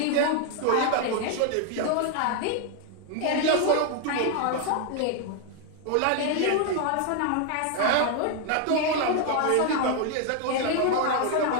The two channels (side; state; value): both; different; correlation 0.00